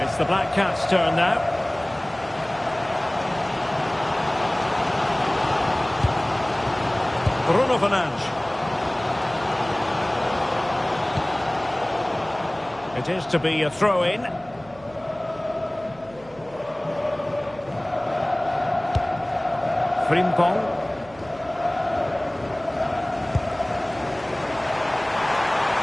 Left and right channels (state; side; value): noise; right; hum, 23 dB below the sound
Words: the Black Cats' turn now. Bruno Fernandes. It is to be a throw-in. Frimpong.